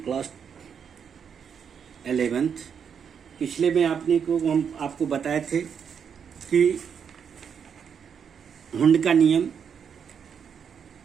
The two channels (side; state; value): left; quieter; 7.3 dB